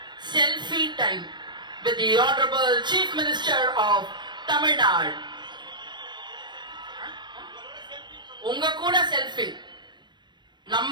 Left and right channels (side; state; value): left; late; 0.22 ms